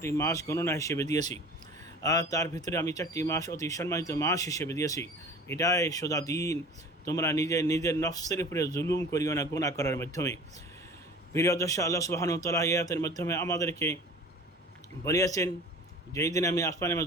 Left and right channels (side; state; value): both; normal; correlation 0.42